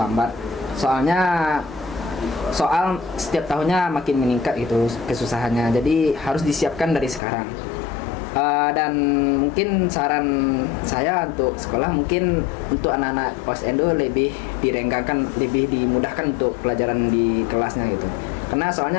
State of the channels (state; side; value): drops out; right; at 7.2 s